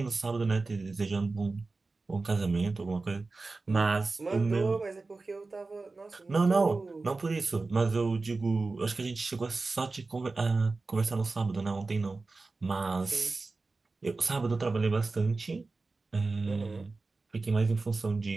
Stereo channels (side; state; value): left; quieter; 3.7 dB